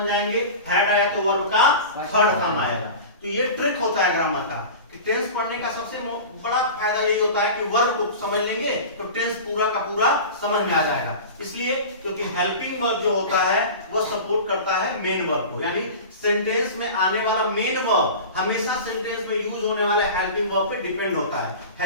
जाएंगे हैड आया तो वर्ब का थर्ड फॉर्म आएगा। तो ये ट्रिक होता है ग्रामर का कि टेंस पढ़ने का सबसे बड़ा फायदा यही होता है कि वर्ब को समझ लेंगे तो टेंस पूरा का पूरा समझ में आ जाएगा, इसलिए क्योंकि हेल्पिंग वर्ब जो होता है वो सपोर्ट करता है मेन वर्ब को, यानी सेंटेंस में आने वाला मेन वर्ब हमेशा सेंटेंस में यूज होने वाले हेल्पिंग वर्ब पे डिपेंड होता है,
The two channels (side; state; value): both; inverted; correlation -0.33